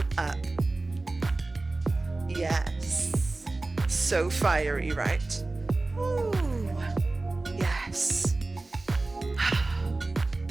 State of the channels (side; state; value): left; quieter; 3.2 dB